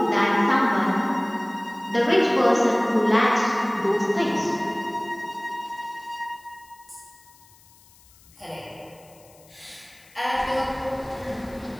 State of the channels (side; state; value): left; noise; hiss, 27 dB below the sound